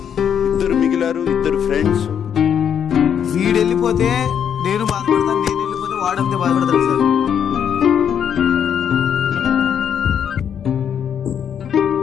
ఇద్దరు మిగిలారు, ఇద్దరు ఫ్రెండ్స్. వీడు వెళ్ళిపోతే నేను బాధపడతాను, నేను వెళ్ళిపోతే వాడంతే బాధపడతాడు సార్.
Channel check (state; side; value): quieter; right; 8.4 dB